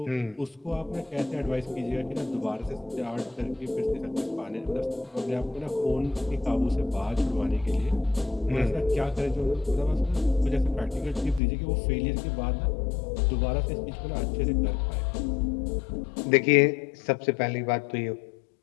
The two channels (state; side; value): drops out; right; at 11.4 s